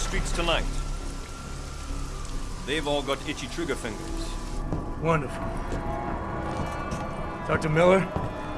tonight. They've all got itchy trigger fingers. Wonderful. Talk to Miller?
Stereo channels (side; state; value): both; identical; correlation 1.00